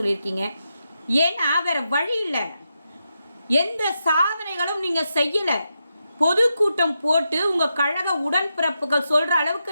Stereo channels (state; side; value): inverted; both; correlation -0.86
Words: ஏன்னா வேற வழி இல்லை, எந்த சாதனைகளும் நீங்கள் செய்யலை. பொதுக்கூட்டம் போட்டு உங்கள் கழக உடன்பிறப்புகள் சொல்கிற